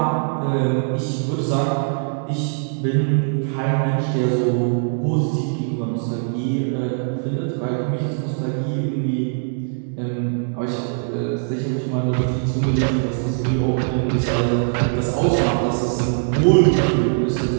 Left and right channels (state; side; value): silent; left; digital silence